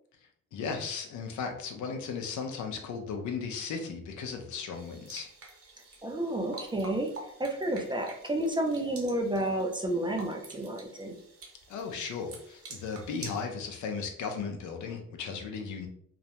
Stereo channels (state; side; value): normal; both; correlation 0.32